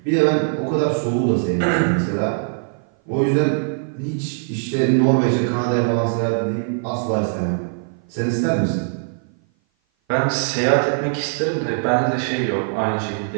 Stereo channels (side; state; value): left; silent; 56 dB below the other